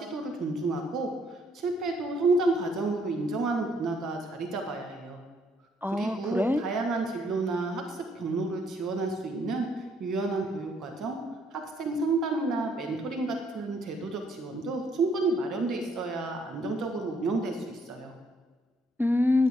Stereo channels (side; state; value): both; normal; correlation 0.68